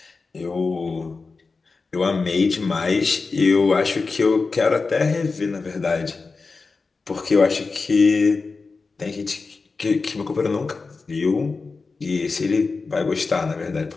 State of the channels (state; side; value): quieter; right; 4.2 dB